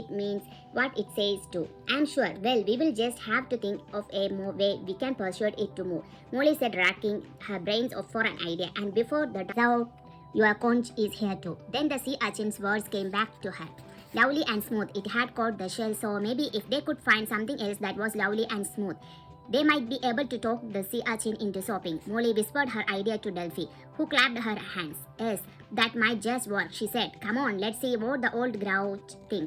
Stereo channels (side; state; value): both; identical; correlation 1.00